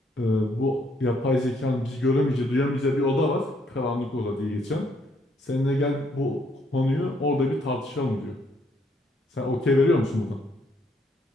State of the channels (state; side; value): normal; both; correlation 0.70